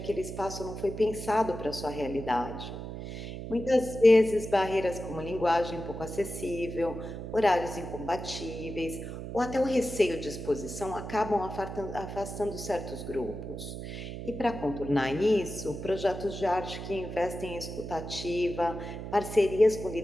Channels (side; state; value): right; noise; hum, 8 dB below the sound